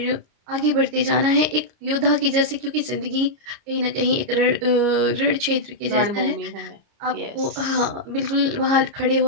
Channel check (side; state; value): left; late; 29 ms